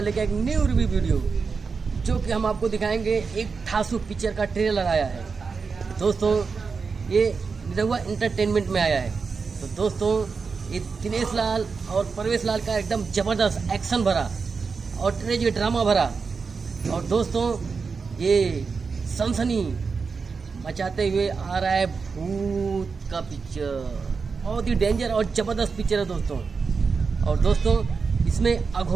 एक न्यू रिव्यू वीडियो जो कि हम आपको दिखाएंगे। एक ठासु पिक्चर का ट्रेलर आया है दोस्तों। ये निरहुआ एंटरटेनमेंट में आया है। तो दोस्तों ये दिनेश लाल और परवेश लाल का एकदम ज़बरदस्त एक्शन भरा और ट्रेजिक ड्रामा भरा और दोस्तों ये सनसनी मचाते हुए आ रहा है भूत का पिक्चर। बहुत ही डेंजर और ज़बरदस्त पिक्चर है दोस्तों। और दोस्तों इसमें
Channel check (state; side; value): quieter; left; 5.0 dB